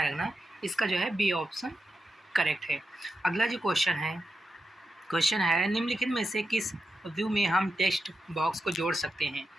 रखना, इसका जो है बी ऑप्शन करेक्ट है। अगला जो क्वेश्चन है निम्नलिखित में से किस व्यू में हम टेक्स्ट बॉक्स को जोड़ सकते हैं?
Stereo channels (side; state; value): both; normal; correlation 0.88